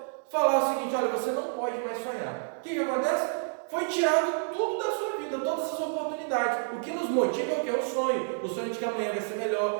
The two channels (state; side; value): silent; left; digital silence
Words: Falar o seguinte: olha, você não pode mais sonhar. O que acontece? Foi tirado tudo da sua vida, todas as oportunidades. O que nos motiva é o que? É o sonho. O sonho de que amanhã vai ser